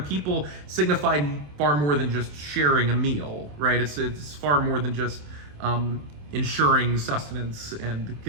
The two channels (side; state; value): left; late; 27 ms